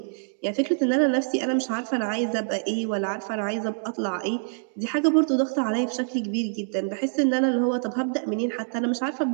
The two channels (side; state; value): left; silent; digital silence